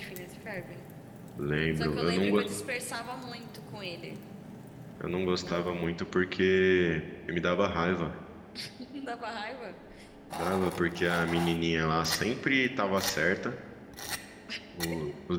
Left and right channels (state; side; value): identical; both; correlation 1.00